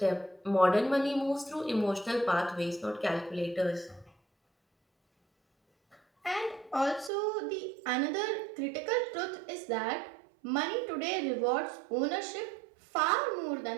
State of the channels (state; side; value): drops out; left; at 7.1 s